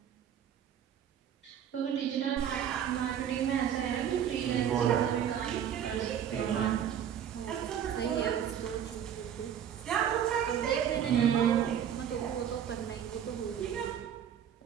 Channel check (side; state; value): left; quieter; 9.3 dB